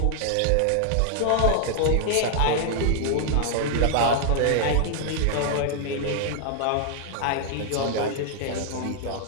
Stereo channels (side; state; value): both; different; correlation 0.00